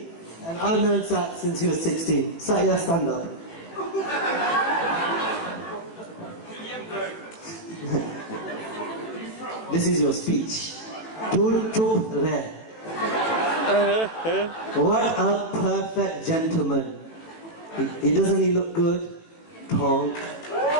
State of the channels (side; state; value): right; late; 18 ms